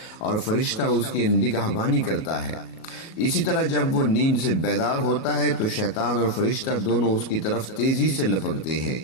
اور فرشتہ اس کی نگہبانی کرتا ہے۔ اسی طرح جب وہ نیند سے بیدار ہوتا ہے تو شیطان اور فرشتہ دونوں اس کی طرف تیزی سے لپکتے ہیں۔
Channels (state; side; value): late; right; 37 ms